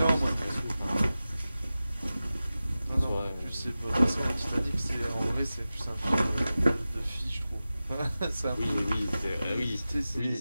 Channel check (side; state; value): both; inverted; correlation -0.95